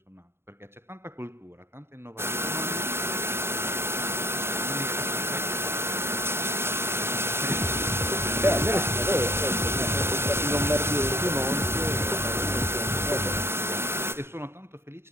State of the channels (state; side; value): late; left; 0.12 ms